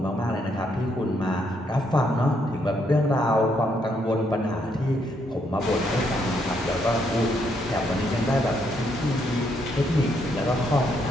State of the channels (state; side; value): normal; both; correlation 0.74